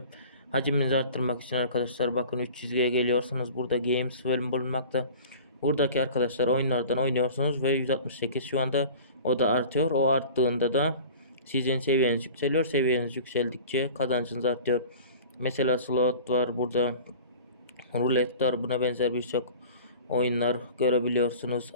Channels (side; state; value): both; inverted; correlation -0.41